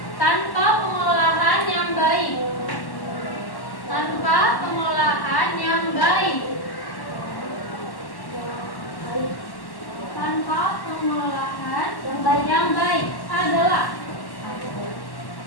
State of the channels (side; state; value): right; late; 1.1 ms